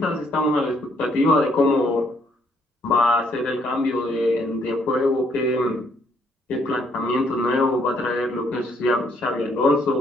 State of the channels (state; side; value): normal; both; correlation 0.69